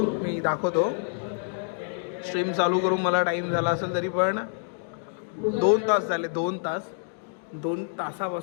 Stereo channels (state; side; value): silent; right; digital silence